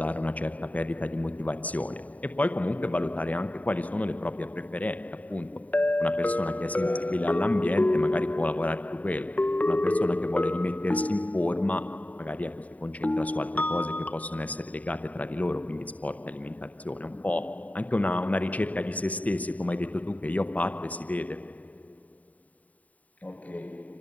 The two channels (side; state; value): right; late; 0.071 ms